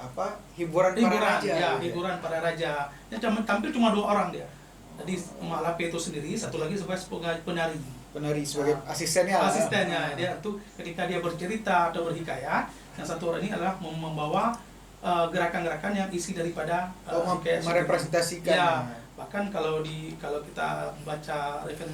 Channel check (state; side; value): identical; both; correlation 1.00